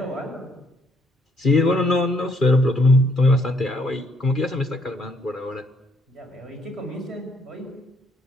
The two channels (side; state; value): both; normal; correlation 0.69